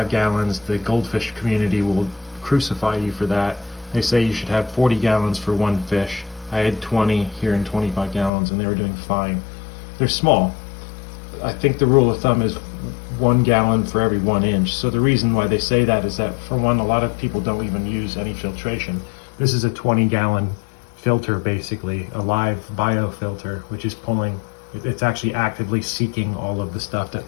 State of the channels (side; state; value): right; drops out; at 8.3 s